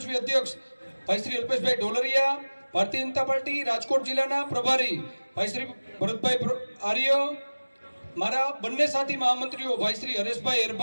અધ્યક્ષ ભાઈ શ્રી અલ્પેશભાઈ ઢોલરિયા, ભારતીય જનતા પાર્ટી રાજકોટ જિલ્લાના પ્રભારી ભાઈ શ્રી ભરતભાઈ આર્ય, મારા બંને સાથી મહામંત્રીઓ ભાઈ શ્રી હરેશભાઈ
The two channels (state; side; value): inverted; both; correlation -1.00